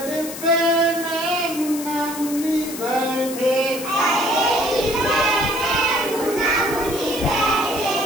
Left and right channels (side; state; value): left; noise; hiss, 10 dB below the sound